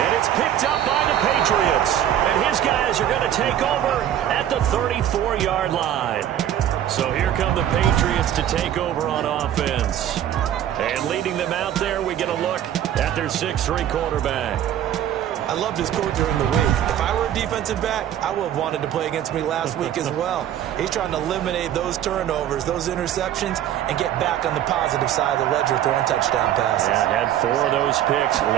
And it's picked up by the Patriots. And his guys are going to take over at the 34-yard line. So here come the Patriots to take over on offense. And leading them out there, we get a look at their 6'3 quarterback. I loved his quote during the week. If I were a defensive back, I would have wanted to play against me last week as well. He's trying to eliminate those turnovers, those interceptions, and get back on the positive side of the ledger throwing touchdown passes. Yeah, had 4 of those picks,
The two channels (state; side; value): quieter; left; 11.1 dB